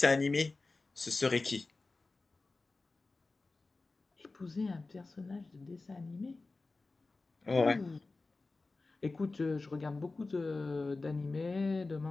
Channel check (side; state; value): right; quieter; 3.5 dB